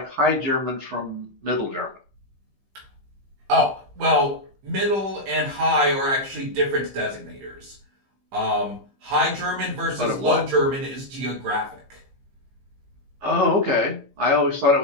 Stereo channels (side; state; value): left; late; 15 ms